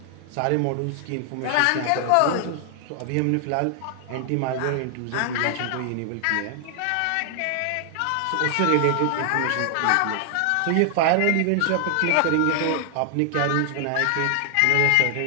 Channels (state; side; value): different; both; correlation 0.00